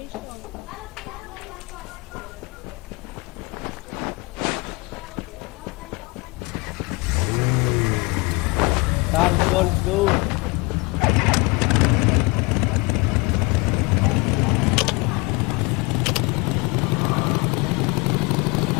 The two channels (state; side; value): quieter; right; 27.0 dB